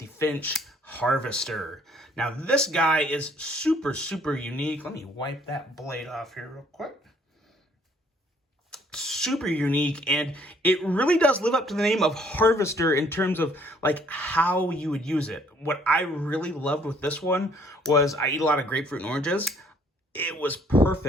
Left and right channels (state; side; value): normal; both; correlation 0.62